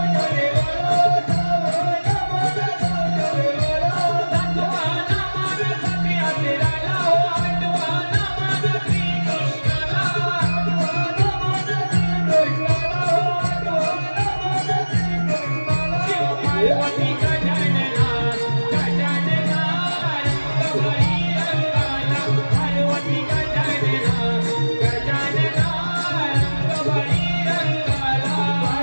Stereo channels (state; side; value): inverted; both; correlation -1.00